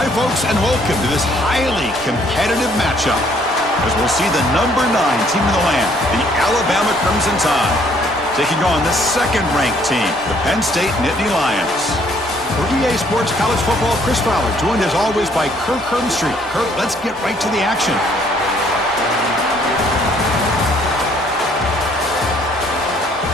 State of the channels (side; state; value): both; normal; correlation 0.64